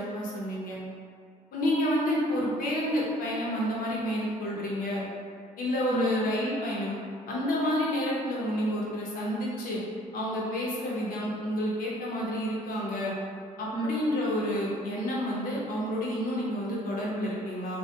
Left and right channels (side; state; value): both; normal; correlation 0.56